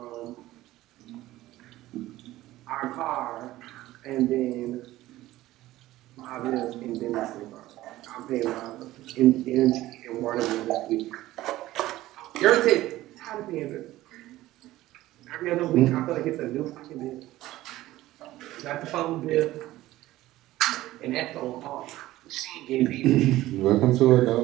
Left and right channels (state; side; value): quieter; left; 16.1 dB